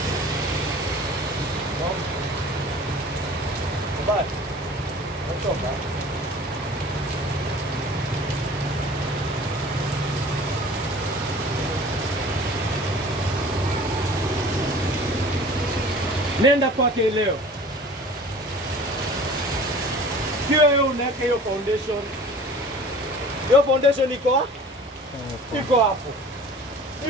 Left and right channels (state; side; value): normal; both; correlation 0.44